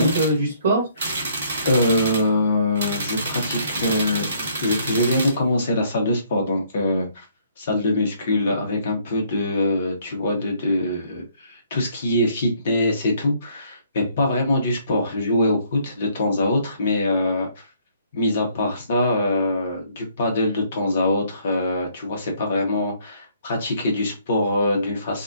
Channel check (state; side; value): inverted; both; correlation -0.65